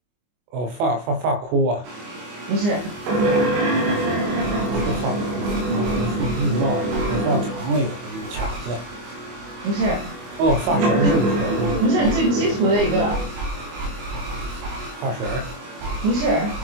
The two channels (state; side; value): late; left; 24 ms